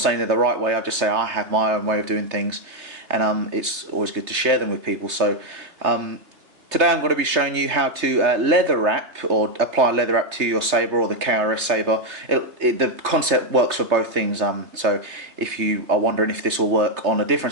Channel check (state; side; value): late; left; 3.3 ms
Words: they're the right way, I just say I have my own way of doing things, and it's always good to share them with people. So today I'm going to be showing you how to leather wrap or apply leather wrap to your saber or the KRS saber. The concept works for both things, so if you are wondering if this will work on a